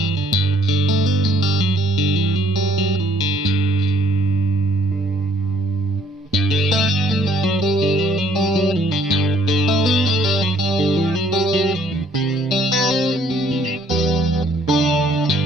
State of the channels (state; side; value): normal; both; correlation 0.63